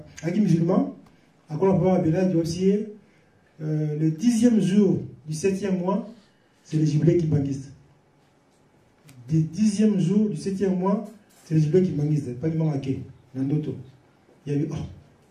un musulman, à quoi on peut appeler du aussi. Le 10e jour du 7e mois, c'est le jubilé qui banguiste. Le 10e jour du 7e mois, c'est le jubilé qui banguiste. Pas du monde à qui, dans d'autres. Il y a eu,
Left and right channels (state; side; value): identical; both; correlation 1.00